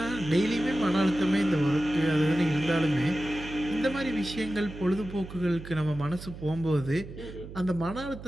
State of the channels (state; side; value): noise; right; hum, 13 dB below the sound